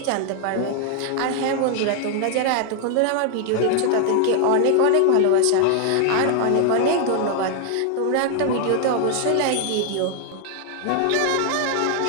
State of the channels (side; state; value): both; different; correlation 0.00